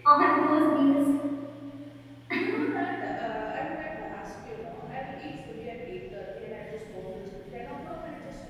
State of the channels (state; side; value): identical; both; correlation 1.00